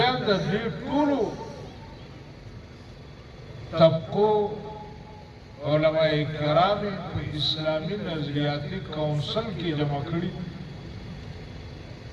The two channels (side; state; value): both; identical; correlation 1.00